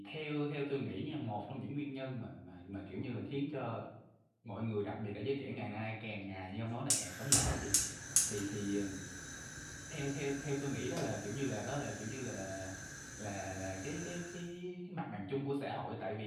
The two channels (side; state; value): both; identical; correlation 1.00